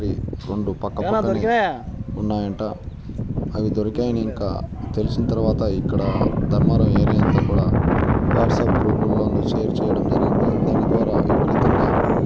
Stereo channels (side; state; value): both; identical; correlation 1.00